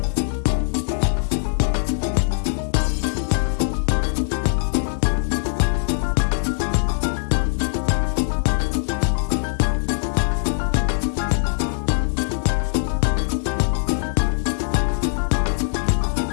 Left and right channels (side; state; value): right; silent; digital silence